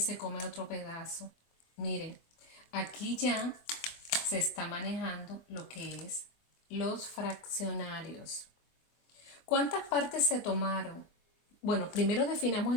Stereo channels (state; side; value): late; right; 24 ms